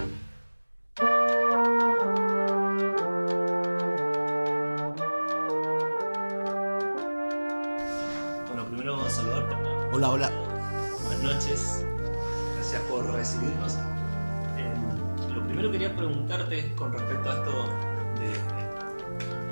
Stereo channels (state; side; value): inverted; both; correlation -1.00